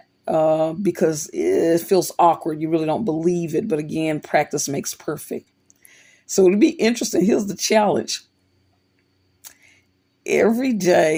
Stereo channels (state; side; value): identical; both; correlation 1.00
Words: because it feels awkward. You really don't believe it. But again, practice makes perfect. So it'll be interesting. Here's the challenge. Every